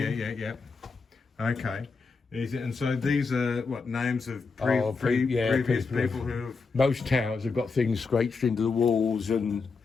Yeah. Okay. And so these are what names of Oh, previous people. people who have. Most towers have got things scraped into the walls and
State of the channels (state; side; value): quieter; right; 4.6 dB